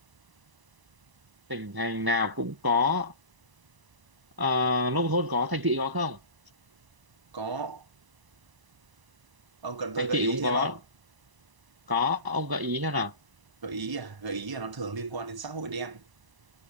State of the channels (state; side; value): late; left; 1.0 ms